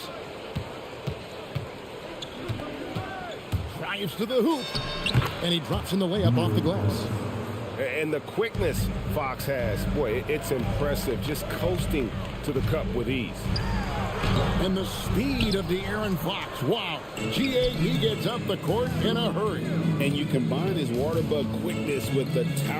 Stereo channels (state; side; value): identical; both; correlation 1.00